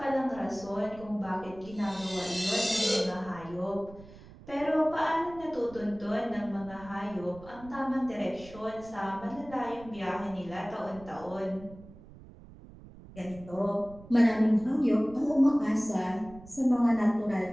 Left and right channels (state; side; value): noise; right; rumble, 19 dB below the sound